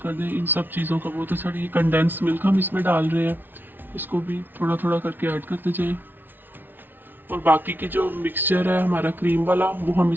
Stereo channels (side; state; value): left; late; 0.093 ms